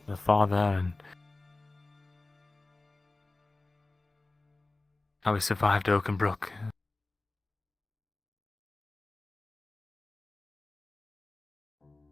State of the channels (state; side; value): quieter; right; 3.1 dB